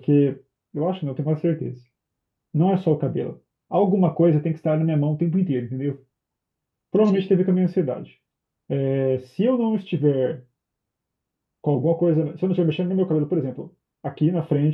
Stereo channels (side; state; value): both; identical; correlation 1.00